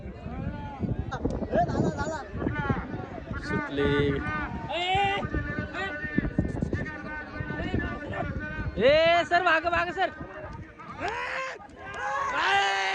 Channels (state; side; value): identical; both; correlation 1.00